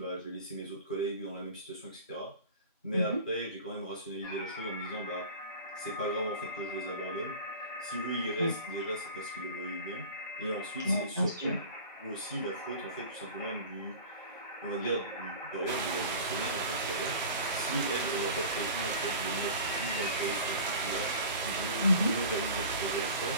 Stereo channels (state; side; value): inverted; both; correlation -0.37